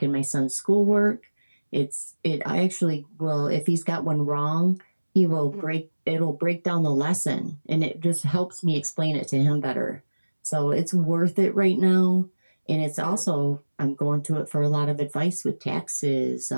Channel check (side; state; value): both; inverted; correlation -1.00